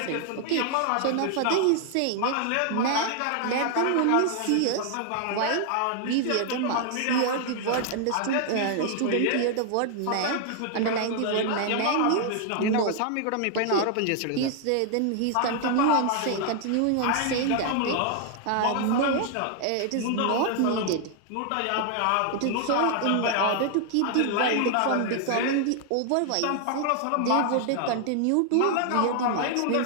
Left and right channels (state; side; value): different; both; correlation 0.00